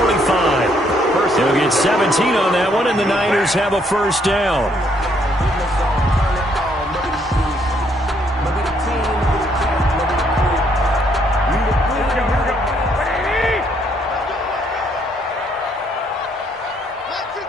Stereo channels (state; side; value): normal; both; correlation 0.70